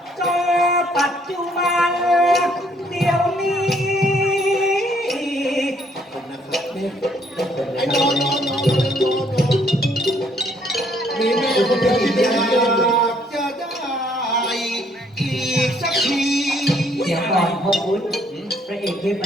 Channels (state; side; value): normal; both; correlation 0.66